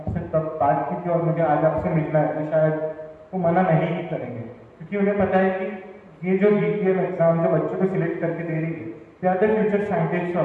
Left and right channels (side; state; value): both; identical; correlation 1.00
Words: तब बात की थी और मुझे आज आपसे मिलना है, तो शायद वो मना नहीं ही करेंगे, क्योंकि उन्हें पता है कि ये जो VVM एग्जाम जो बच्चों को सिलेक्ट करके दे रही है, they are the future scientist